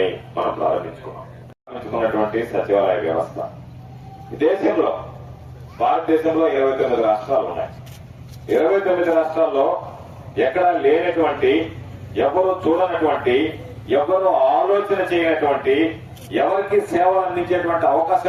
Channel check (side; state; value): both; identical; correlation 1.00